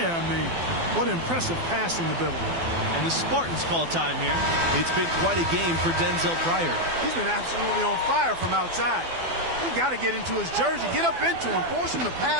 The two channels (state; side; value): late; left; 12 ms